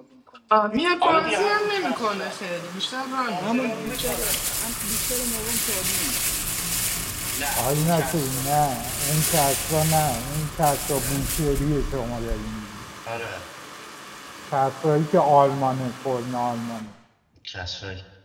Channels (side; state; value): both; identical; correlation 1.00